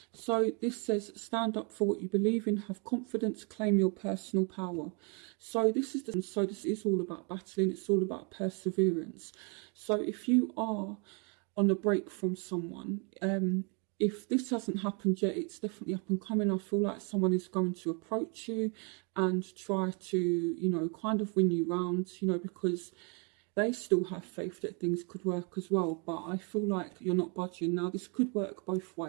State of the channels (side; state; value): left; quieter; 35.1 dB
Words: So this says, stand up for what you believe in, have confidence, claim your personal power. So this is all about battling. It's all about perseverance. So if you are on a break from someone, if this hasn't happened yet, it's definitely up and coming. I feel like someone is going to approach you and try to, kind of win you round, because they still have faith that things could work as well. But I feel like you're not budging. Now, this could work both